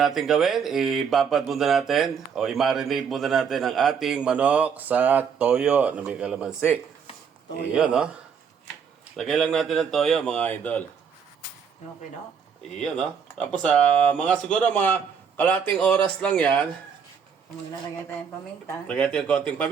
natin gawin, ibabad muna natin o i-marinate muna natin ang ating manok sa toyo na may kalamansi. Iyon, no? Lagay lang natin ng toyo, mga idol. Okay, no? Iyon, no? Tapos, siguro mga kalating oras lang yan. Maglalagay tayong paminta. Lagay natin konting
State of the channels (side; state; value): left; quieter; 6.8 dB